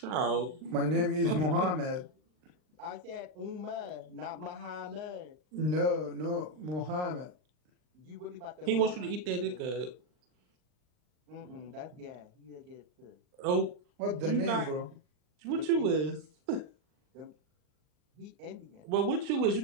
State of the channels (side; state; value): left; late; 39 ms